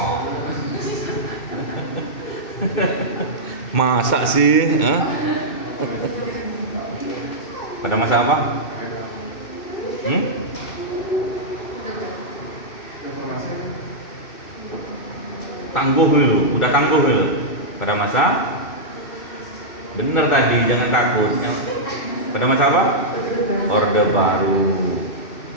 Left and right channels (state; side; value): late; right; 2.6 ms